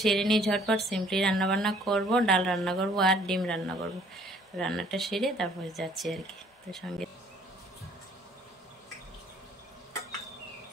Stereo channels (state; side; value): normal; both; correlation 0.58